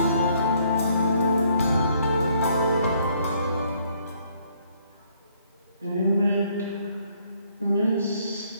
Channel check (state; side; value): inverted; both; correlation -0.67